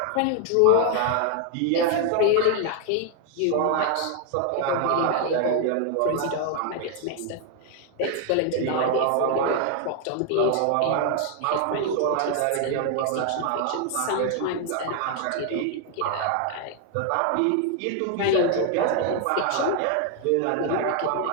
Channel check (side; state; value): both; different; correlation 0.00